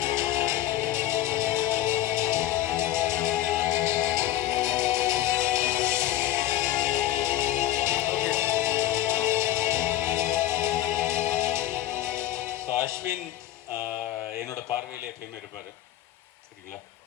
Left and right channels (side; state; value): right; quieter; 13.7 dB